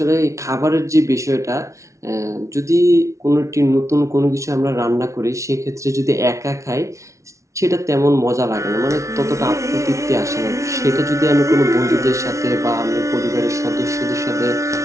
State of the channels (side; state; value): left; late; 0.14 ms